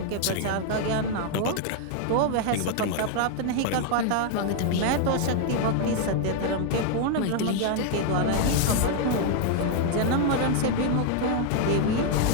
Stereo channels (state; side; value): different; both; correlation 0.00